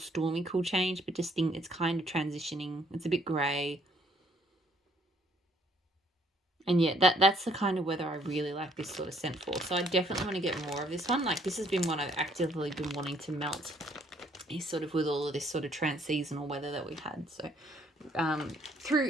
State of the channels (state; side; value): normal; both; correlation 0.66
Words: cool change, but just it's kind of transitioning. It's a bit grey. And yeah, that's the kind of weather I really like this sort of scent for. So I definitely want to get more of this one. Like, this has been one I've actively been wanting to melt, is sort of with all of this sort of trans-seasonal weather that we've had. So